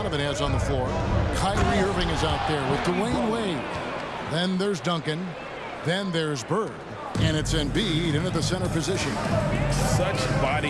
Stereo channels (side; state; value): both; identical; correlation 1.00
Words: has on the floor. Kyrie Irving is out there with Dwayne Wade. Then there's Duncan. Then there's Bird. And it's Embiid into the center position. Such